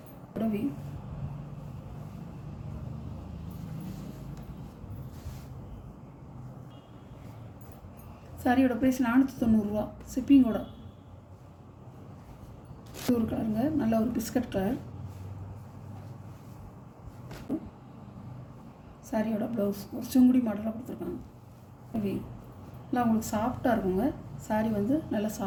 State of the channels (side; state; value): both; identical; correlation 1.00